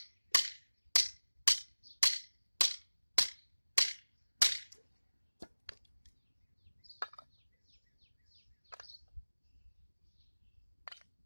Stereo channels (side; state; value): both; inverted; correlation -1.00